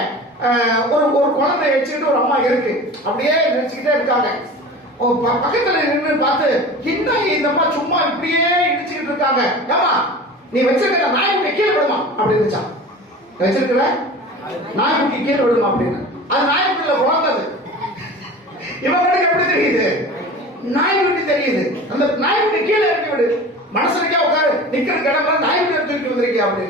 ஒரு குழந்தை வச்சுக்கிட்டு ஒரு அம்மா இருக்கு, அப்படியே நினைச்சுக்கிட்டே இருக்காங்க. பக்கத்துல நின்று பார்த்து, இந்த அம்மா சும்மா இப்படியே இடிச்சுக்கிட்டு இருக்காங்க. ஏமா நீ வச்சிருக்கிற நாய்க்குட்டி கீழே விடுமா அப்படி இருந்துச்சான். வச்சிருக்கிற நாய்க்குட்டி கீழே விடுமா அப்படின்னு. அது நாய்க்குட்டியில குழந்தது. இவங்களுக்கு எப்படி தெரியுது, நாய்க்குட்டி தெரியுது. அந்த நாய்க்குட்டி கீழே இறக்கி விடு, மனசுக்கே உட்காரு, நிக்கிற கிடமா நாய்க்குட்டி தூக்கி வந்திருக்கியா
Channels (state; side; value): normal; both; correlation 0.36